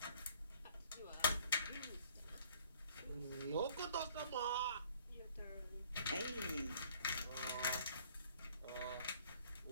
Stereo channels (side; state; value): both; inverted; correlation -0.56